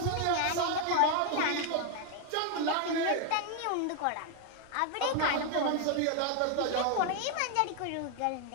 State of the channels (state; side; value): different; both; correlation 0.00